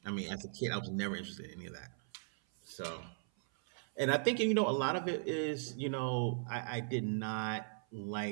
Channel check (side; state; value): left; silent; 53 dB below the other